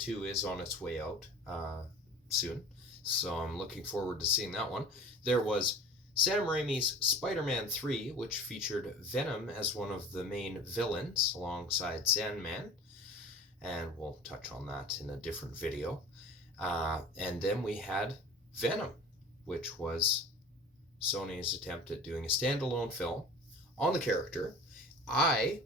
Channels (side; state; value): both; normal; correlation 0.41